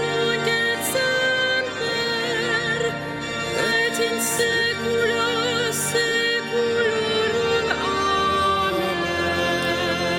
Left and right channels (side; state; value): both; identical; correlation 1.00